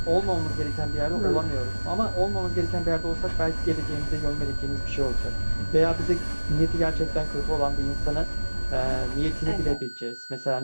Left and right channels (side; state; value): both; inverted; correlation -1.00